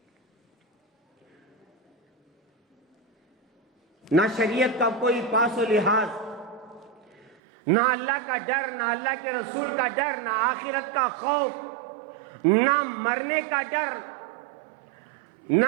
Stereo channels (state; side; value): drops out; left; at 7.4 s